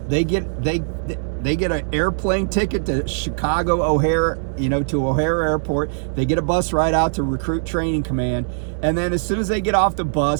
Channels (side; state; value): left; silent; 61 dB below the other